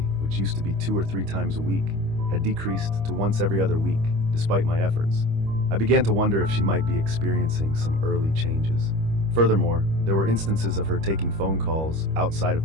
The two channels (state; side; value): late; left; 25 ms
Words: which used to be 2 or 3 times a week, had decreased to once every other week, despite my efforts. I began to wonder if she might be experiencing some early changes. Furthermore, There were instances of her taking phone calls outside of